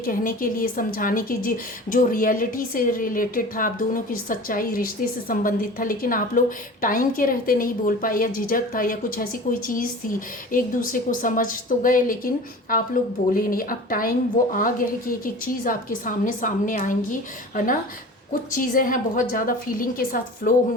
कहने के लिए, समझाने के लिए, जो रियलिटी से रिलेटेड था, आप दोनों की सच्चाई, रिश्ते से संबंधित था, लेकिन आप लोग टाइम के रहते नहीं बोल पाए, या झिझक था, या कुछ ऐसी कोई चीज़ थी। एक दूसरे को समझ तो गए लेकिन आप लोग बोले नहीं। अब टाइम वो आ गया है कि एक एक चीज़ आपके सामने आएंगी, है ना। कुछ चीज़ें हैं बहुत ज़्यादा फीलिंग के साथ फ्लो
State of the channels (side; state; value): both; normal; correlation 0.38